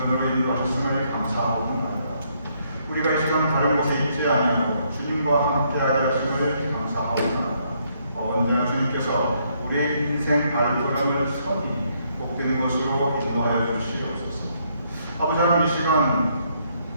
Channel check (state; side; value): inverted; both; correlation -0.72